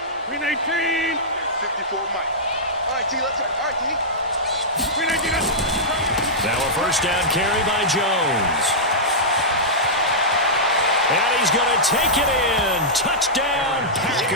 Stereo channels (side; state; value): both; normal; correlation -0.12